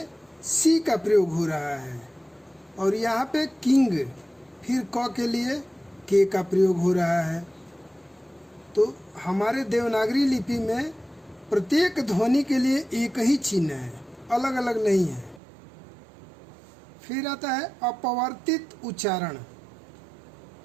सी का प्रयोग हो रहा है, और यहाँ पे किंग फिर क के लिए के का प्रयोग हो रहा है। तो हमारे देवनागरी लिपि में प्रत्येक ध्वनि के लिए एक ही चिन्ह है, अलग अलग नहीं है। फिर आता है अपवर्तित उच्चारण।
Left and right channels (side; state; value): left; drops out; at 15.4 s